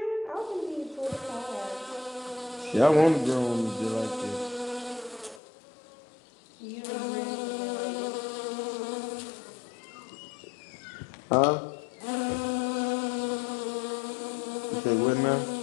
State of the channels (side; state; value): right; drops out; at 5.4 s